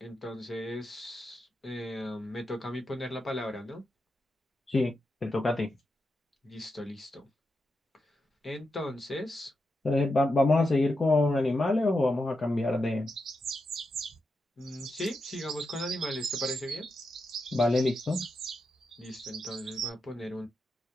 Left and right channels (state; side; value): normal; both; correlation 0.86